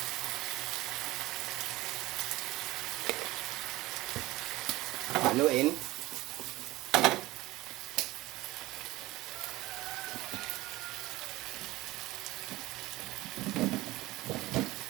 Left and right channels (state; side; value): quieter; left; 18.7 dB